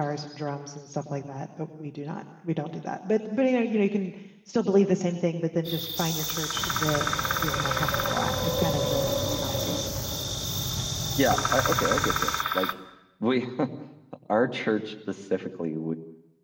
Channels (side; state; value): both; identical; correlation 1.00